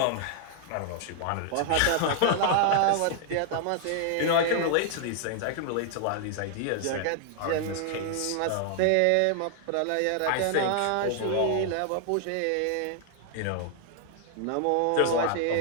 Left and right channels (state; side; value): different; both; correlation 0.00